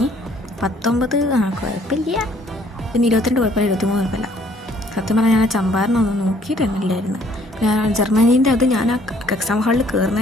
19 കുഴപ്പമില്ല, പിന്നെ 22 കുഴപ്പമില്ല, 23 കുഴപ്പമില്ല. സത്യം പറഞ്ഞാൽ ഞാൻ ചമ്പാരനൊന്നും നോക്കിയിട്ടന്നില്ലായിരുന്നു. ഞാൻ ജർമ്മനീൻ്റെ അത് ഞാൻ ആ എക്സാം ഹാളിൽ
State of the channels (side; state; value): both; normal; correlation 0.62